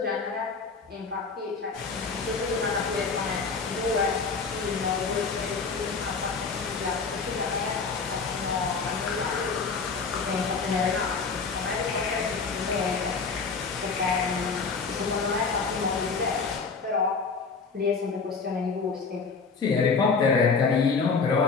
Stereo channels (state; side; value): quieter; right; 4.9 dB